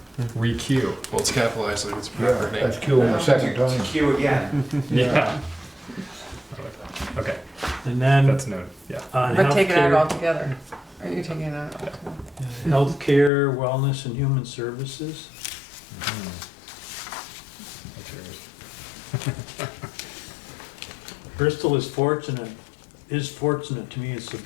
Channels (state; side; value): drops out; right; at 13.3 s